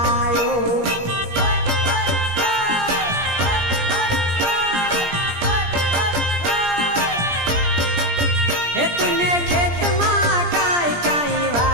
हे तूने खेत माँ काई काई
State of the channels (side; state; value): left; late; 17 ms